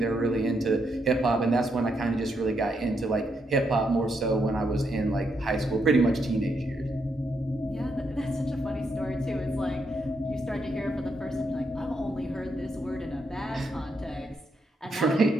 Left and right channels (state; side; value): normal; both; correlation 0.79